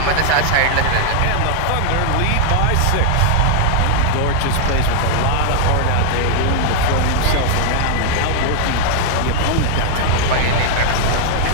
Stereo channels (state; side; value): different; both; correlation -0.01